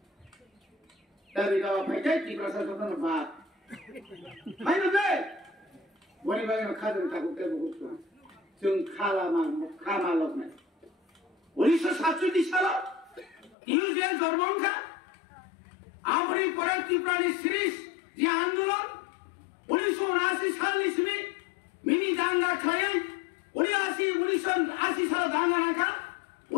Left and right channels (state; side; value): drops out; right; at 13.6 s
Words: দাবি দাও ফাইটাই কি প্রশাসনের বাদ হায়নো দে Wani bagai kader takut terbuka, jeng kama loknya. 1947 সালে ইউজেন জন্মঙ্কা আমরি পরে ত্রিপুরানি সিরিজ যে আন্দোলন 1979 সাল ইসমি মিনি দাঙ্গা খায় 1980 সালে দাঙ্গা রাখা